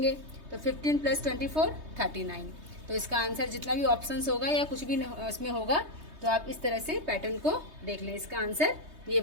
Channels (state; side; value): late; left; 3.2 ms